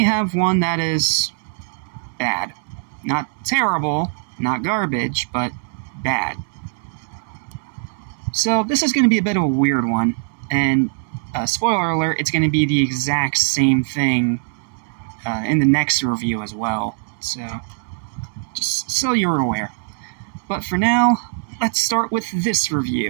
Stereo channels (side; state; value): left; silent; 65 dB below the other